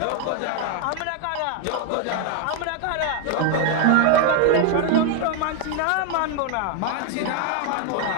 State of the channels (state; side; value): different; both; correlation 0.01